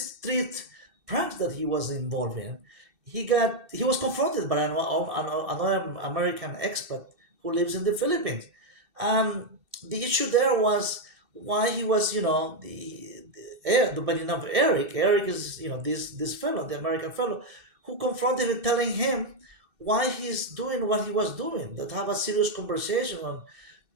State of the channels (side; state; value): left; late; 2.6 ms